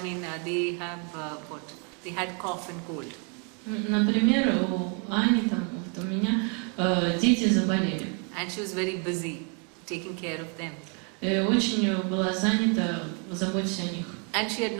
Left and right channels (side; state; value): left; quieter; 36.2 dB